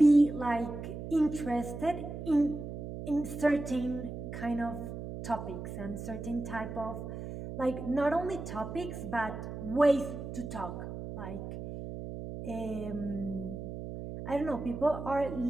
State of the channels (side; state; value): right; noise; hum, 8 dB below the sound